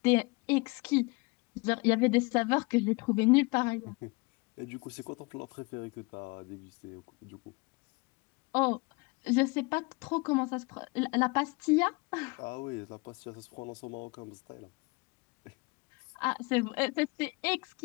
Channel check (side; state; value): right; quieter; 27.2 dB